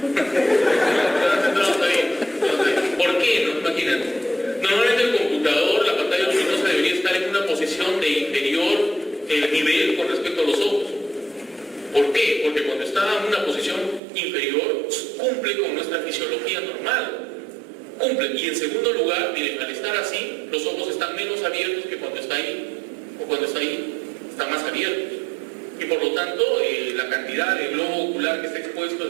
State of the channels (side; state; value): left; drops out; at 14.0 s